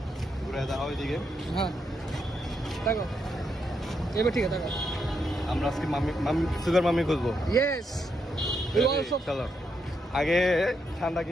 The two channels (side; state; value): both; normal; correlation 0.80